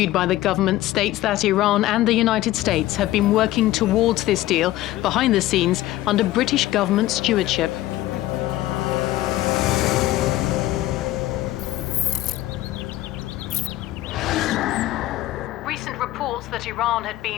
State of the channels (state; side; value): quieter; right; 15.6 dB